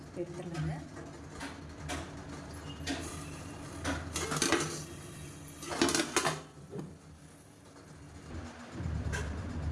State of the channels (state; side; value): identical; both; correlation 1.00